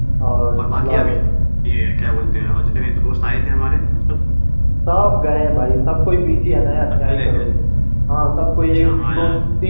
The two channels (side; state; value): both; inverted; correlation -1.00